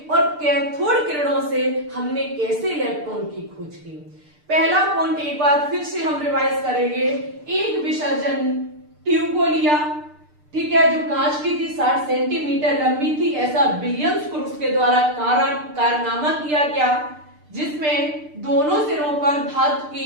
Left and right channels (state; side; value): late; left; 6.7 ms